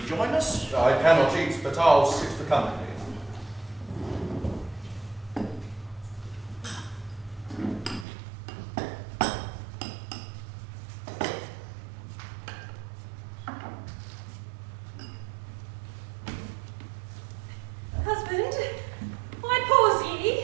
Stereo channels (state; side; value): drops out; left; at 8.1 s